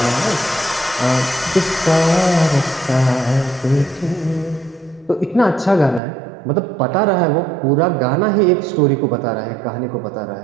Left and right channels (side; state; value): left; drops out; at 6.0 s